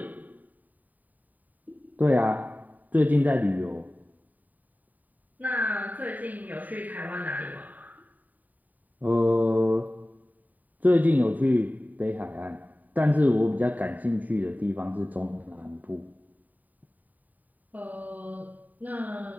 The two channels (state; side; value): late; left; 0.081 ms